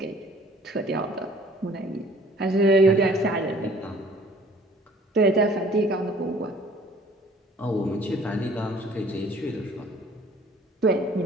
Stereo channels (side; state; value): both; normal; correlation 0.54